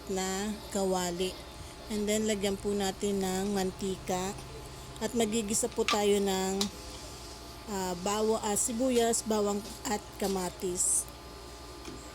na kawali. And then lagyan po natin ng mantika. At magigisa po tayo ng sibuyas, bawang at kamatis.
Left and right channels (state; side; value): identical; both; correlation 1.00